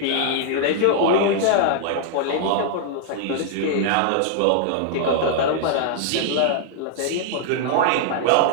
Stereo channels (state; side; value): different; both; correlation -0.01